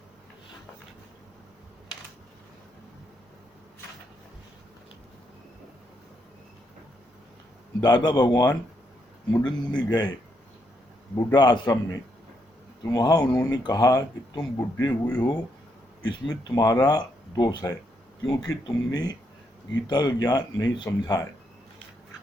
दादा भगवान मुंडन मुनि गए बुढ़ा आश्रम में, तो वहां उन्होंने कहा कि तुम बुढ़े हुए हो, इसमें तुम्हारा दोष है, क्योंकि तुमने गीता का ज्ञान नहीं समझा है।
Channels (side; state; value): both; normal; correlation 0.78